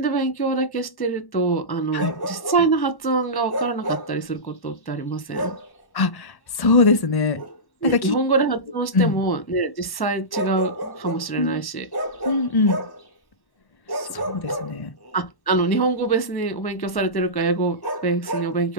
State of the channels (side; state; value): right; late; 1.1 ms